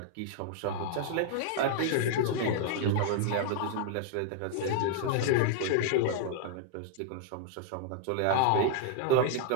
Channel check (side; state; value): both; different; correlation 0.00